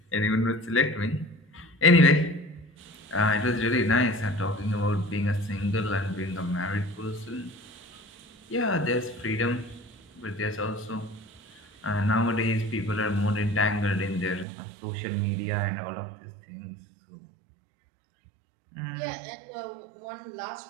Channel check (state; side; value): drops out; left; at 14.5 s